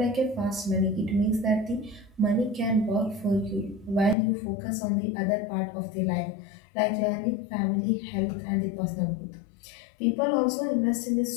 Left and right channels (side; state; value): right; drops out; at 4.2 s